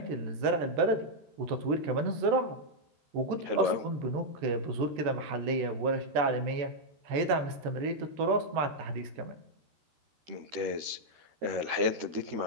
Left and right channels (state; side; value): late; left; 13 ms